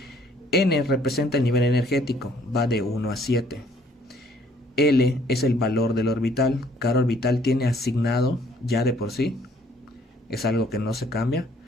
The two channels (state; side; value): normal; both; correlation 0.61